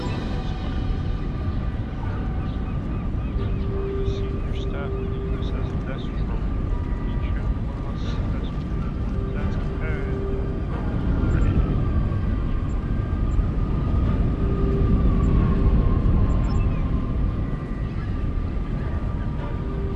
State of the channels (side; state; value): both; identical; correlation 1.00